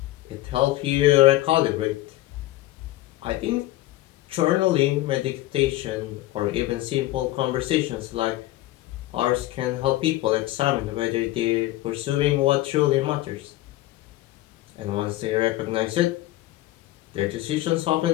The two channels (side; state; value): right; quieter; 16.6 dB